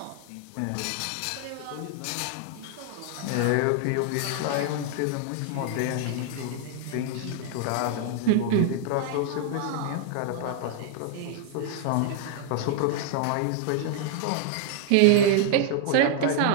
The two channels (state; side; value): different; both; correlation 0.00